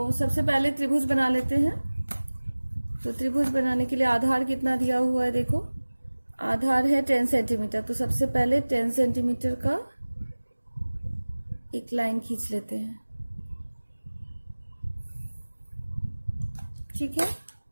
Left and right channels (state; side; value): inverted; both; correlation -1.00